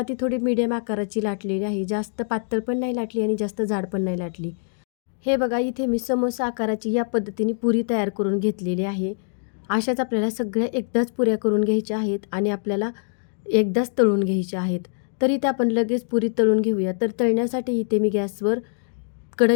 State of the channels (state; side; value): silent; right; digital silence